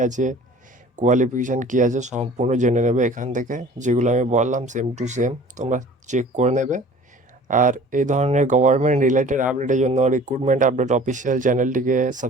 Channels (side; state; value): both; normal; correlation 0.47